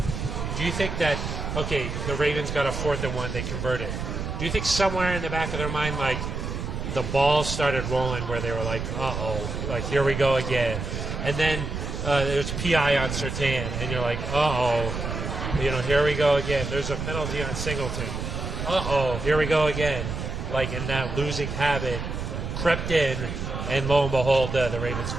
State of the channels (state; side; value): noise; right; rumble, 4 dB below the sound